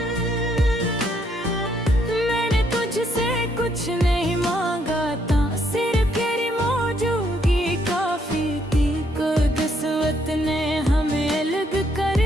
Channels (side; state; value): both; normal; correlation 0.72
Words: मैंने तुझसे कुछ नहीं मांगा था, सिर्फ तेरी मौजूदगी काफी थी। किस्मत ने हमें अलग कर